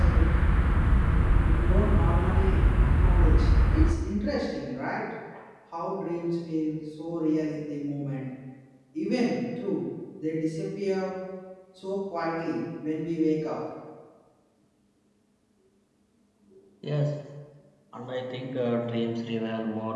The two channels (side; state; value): both; identical; correlation 1.00